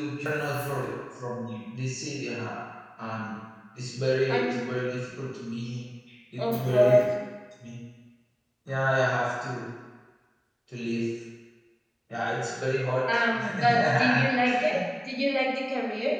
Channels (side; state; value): both; identical; correlation 1.00